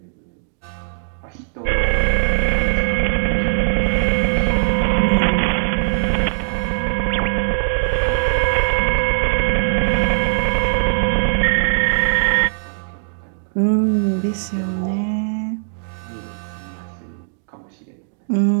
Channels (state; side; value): silent; left; digital silence